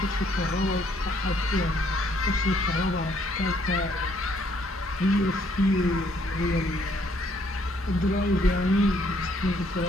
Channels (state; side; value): normal; both; correlation 0.67